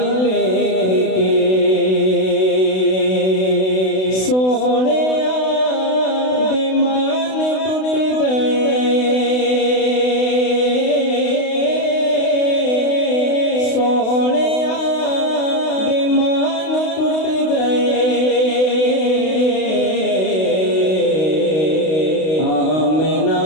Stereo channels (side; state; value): right; late; 32 ms